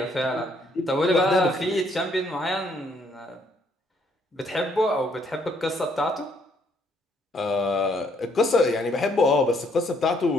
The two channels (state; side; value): normal; both; correlation 0.68